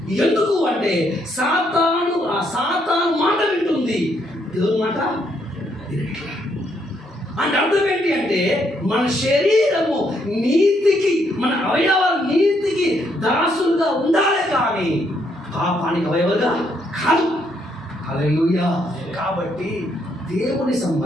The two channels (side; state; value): both; normal; correlation 0.73